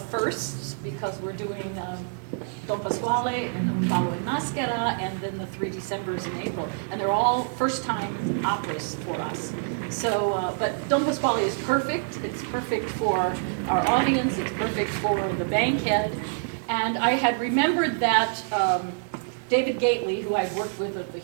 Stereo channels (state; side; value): silent; left; digital silence